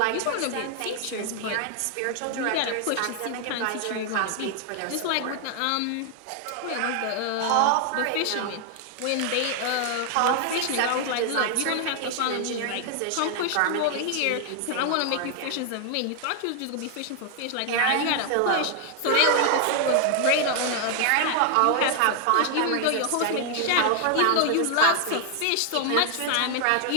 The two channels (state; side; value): different; both; correlation 0.00